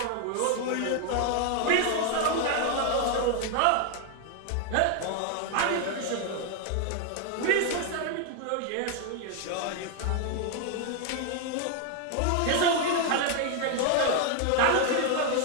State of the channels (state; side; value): different; both; correlation 0.00